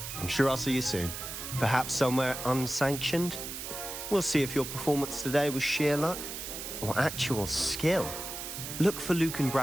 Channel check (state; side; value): noise; right; hiss, 7 dB below the sound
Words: I'm sure I'll see you soon. Perhaps somewhere unsanctioned? We'll see if your performance today was sheer luck or actual skill. Look for Luke and